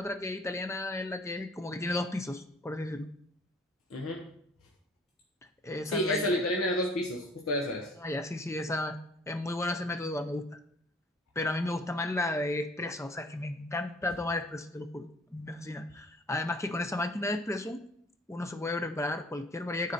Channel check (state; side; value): normal; both; correlation 0.53